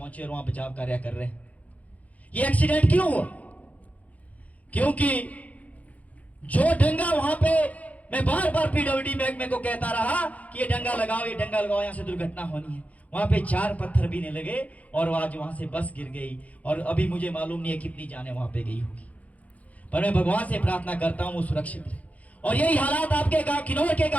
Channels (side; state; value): right; late; 0.070 ms